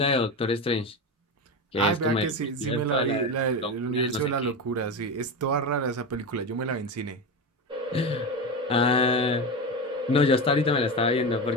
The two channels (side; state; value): both; normal; correlation 0.20